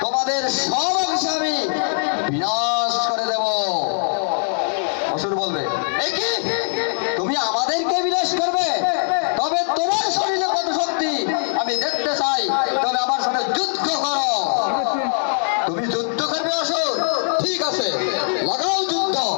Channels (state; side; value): silent; right; digital silence